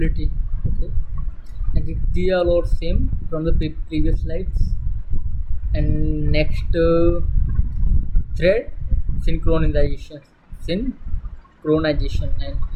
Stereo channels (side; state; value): both; identical; correlation 1.00